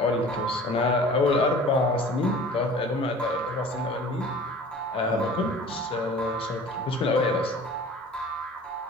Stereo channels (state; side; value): normal; both; correlation 0.44